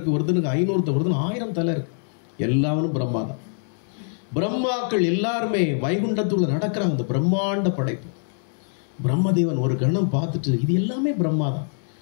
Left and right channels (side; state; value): right; silent; 63 dB below the other